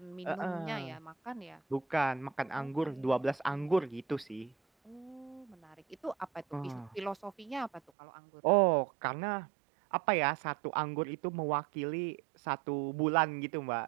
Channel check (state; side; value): drops out; left; at 7.9 s